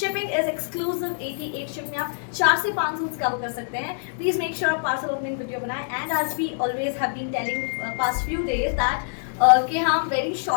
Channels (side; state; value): right; silent; digital silence